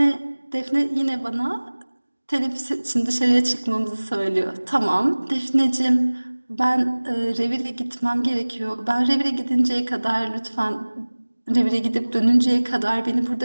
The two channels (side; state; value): both; inverted; correlation -1.00